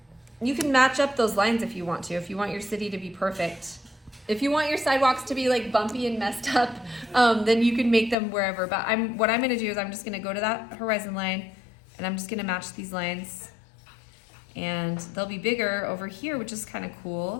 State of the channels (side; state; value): right; drops out; at 8.2 s